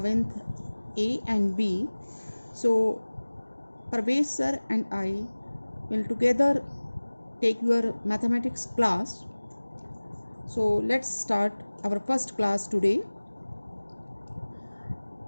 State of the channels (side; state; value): both; inverted; correlation -1.00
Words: A and B, so Parvez sir and I will together take your mathematics class. So let's start our first class today.